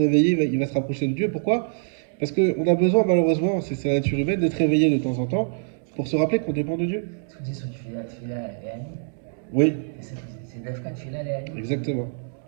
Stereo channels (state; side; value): silent; left; digital silence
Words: il va se rapprocher de Dieu. Pourquoi? Parce qu'on a besoin, malheureusement, c'est la nature humaine, d'être réveillé de temps en temps pour se rappeler qu'on dépend de Dieu. Ce qu'on dit sur Tfila Léani, Oui, c'est Dafka Tfila Léani. exactement.